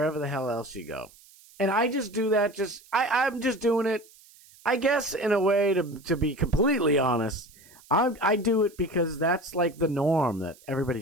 the hell else you go. And I just do that, I'm just doing it, I guess, in a way, to be completely honest. I do it because that's, like, the norm that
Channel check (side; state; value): right; noise; hiss, 25 dB below the sound